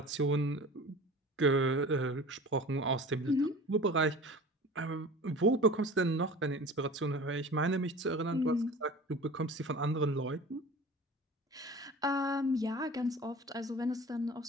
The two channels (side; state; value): both; normal; correlation 0.39